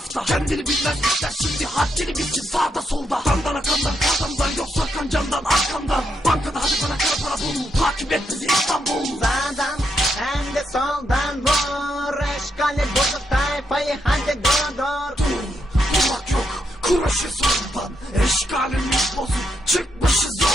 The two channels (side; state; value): both; normal; correlation 0.80